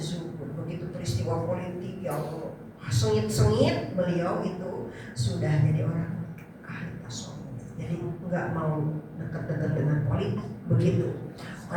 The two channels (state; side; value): identical; both; correlation 1.00